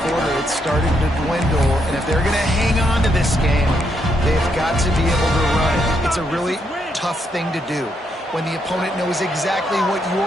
quarter, it's starting to dwindle. And if they're going to hang on to this game, they've got to be able to run it. It's a really tough thing to do when the opponent knows exactly what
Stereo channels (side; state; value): both; normal; correlation 0.77